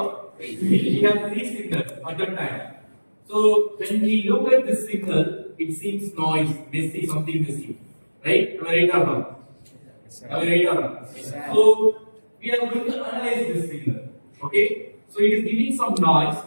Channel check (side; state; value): both; inverted; correlation -1.00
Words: We have 3 signals at a time. So when we look at this signal, it seems noise, messy, something messy, right? Am I right or not? Am I right or not? So we are going to analyze this signal. Okay? So it is giving some noise.